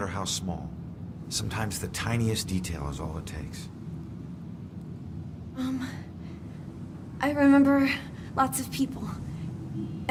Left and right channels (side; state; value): both; identical; correlation 1.00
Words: how small. Sometimes the tiniest detail is all it takes. I remember lots of people.